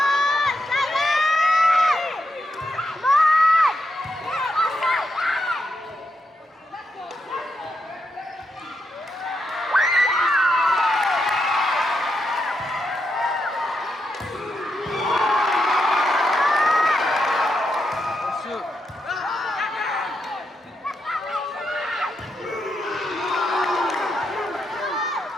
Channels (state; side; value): normal; both; correlation 0.83